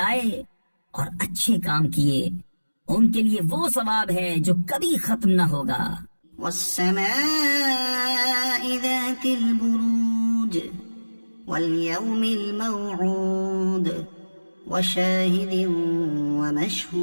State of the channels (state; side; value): inverted; both; correlation -1.00